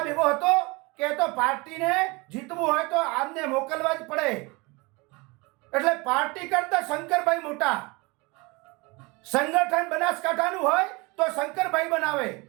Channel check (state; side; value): quieter; left; 26.1 dB